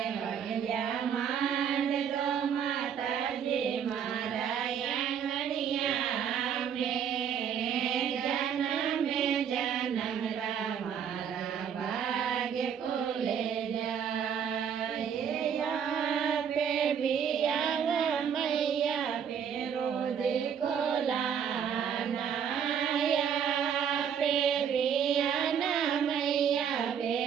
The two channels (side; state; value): left; quieter; 7.9 dB